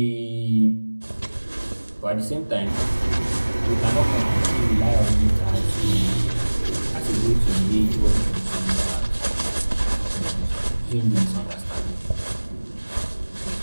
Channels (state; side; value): inverted; both; correlation -1.00